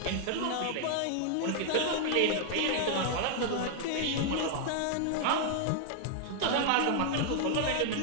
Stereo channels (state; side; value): different; both; correlation 0.00